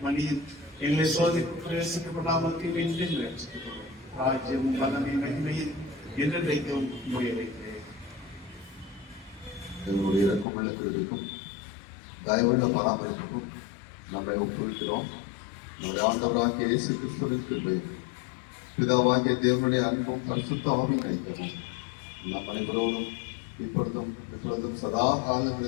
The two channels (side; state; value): right; drops out; at 10.5 s